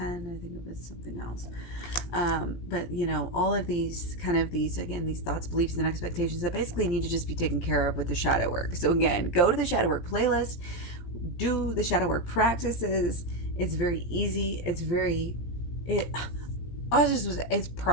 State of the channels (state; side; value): late; right; 17 ms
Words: I think it was something else. But all of these these thoughts, beliefs, and expectations that basically need to just be taken care of with the shadow work. So again, go to the shadow work playlist, do the shadow work practices. It's very easy. It's